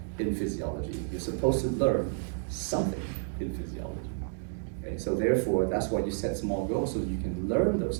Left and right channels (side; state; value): left; silent; digital silence